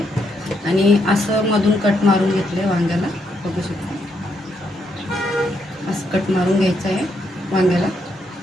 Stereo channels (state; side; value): normal; both; correlation 0.77